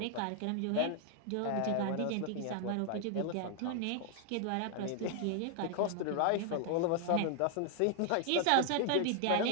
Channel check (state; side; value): different; both; correlation 0.00